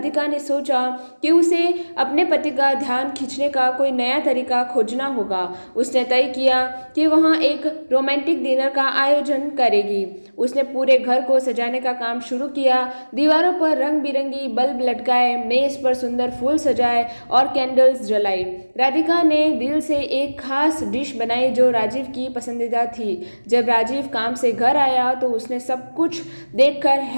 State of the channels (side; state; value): both; inverted; correlation -1.00